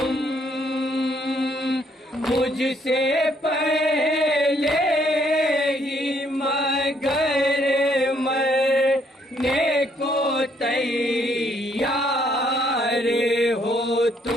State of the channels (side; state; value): both; normal; correlation 0.69